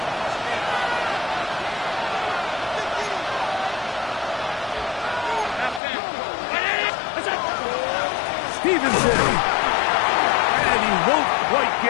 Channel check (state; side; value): drops out; right; at 5.8 s